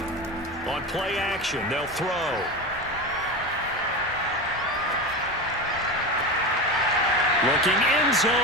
On play action, they'll throw. Looking end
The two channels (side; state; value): both; normal; correlation 0.23